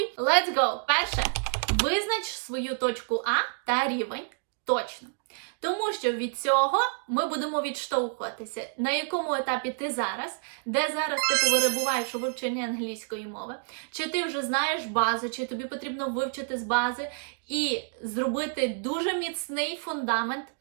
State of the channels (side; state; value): left; silent; 59 dB below the other